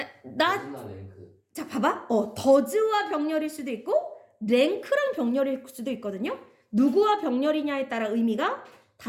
not. 무슨 랭크. 자, 봐봐. 더즈와 병렬일 수도 있고 랭크랑 병렬일 수도 있거든요. 누구와 병렬이냐에 따라 의미가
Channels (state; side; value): identical; both; correlation 1.00